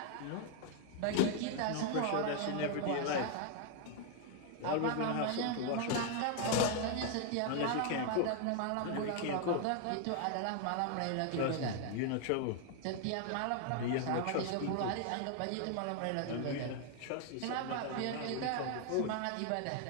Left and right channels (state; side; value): different; both; correlation 0.00